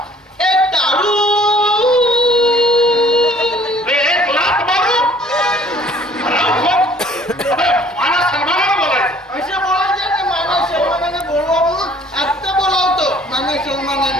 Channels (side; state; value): both; normal; correlation 0.55